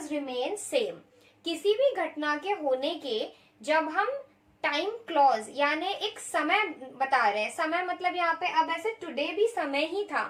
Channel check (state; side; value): identical; both; correlation 1.00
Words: रिमेन सेम। किसी भी घटना के होने के जब हम टाइम क्लॉज यानी एक समय बता रहे हैं, समय मतलब यहाँ पे अब ऐसे टुडे भी समय ही था